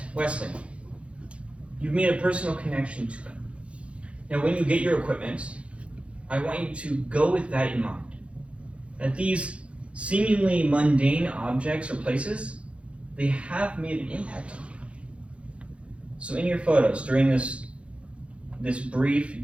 Wesleyan. You've made a personal connection to them. Now when you get your equipment, I want you to go with that in mind. That these seemingly mundane objects or places, they have made an impact on you. So in your photos, during this brief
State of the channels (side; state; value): left; late; 0.061 ms